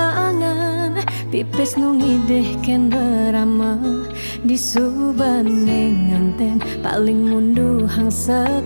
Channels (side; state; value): both; inverted; correlation -1.00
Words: pipes nungideh ken berama disubane nganten paling mundu hang